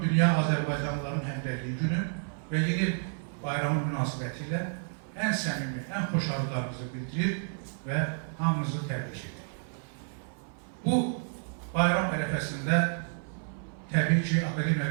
Dünya Azərbaycanlıların Həmrəyliyi günü və yeni bayramı münasibəti ilə ən səmimi, ən xoş arzularımızı bildirir və hamımızı təbrik edir. Bu bayram ərəfəsində təbii ki, akademiya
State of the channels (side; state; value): left; silent; 58 dB below the other